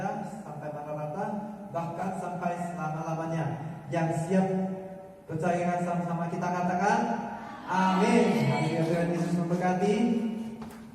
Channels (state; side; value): identical; both; correlation 1.00